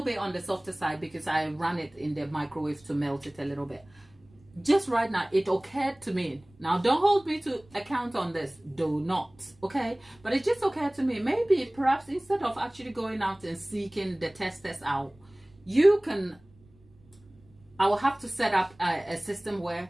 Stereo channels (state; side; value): noise; right; rumble, 29 dB below the sound